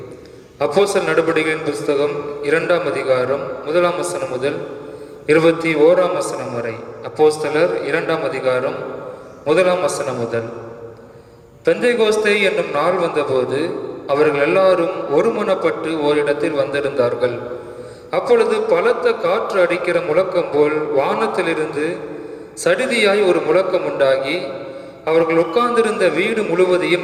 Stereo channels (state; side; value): identical; both; correlation 1.00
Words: அப்போஸ்தலர் நடபடிகளின் புஸ்தகம் 2ஆம் அதிகாரம் 1ஆம் வசனம் முதல் 21ஆம் வசனம் வரை. அப்போஸ்தலர் 2ஆம் அதிகாரம் 1ஆம் வசனம் முதல். பெந்தைகோஸ்தே என்னும் நாள் வந்தபோது அவர்கள் எல்லாரும் ஒருமனப்பட்டு ஓரிடத்தில் வந்திருந்தார்கள். அப்பொழுது பலத்த காற்று அடிக்கிற முழக்கம் போல் வானத்திலிருந்து சடிதியாய் ஒரு முழக்கம் உண்டாகி அவர்கள் உட்கார்ந்திருந்த வீடு முழுவதையும்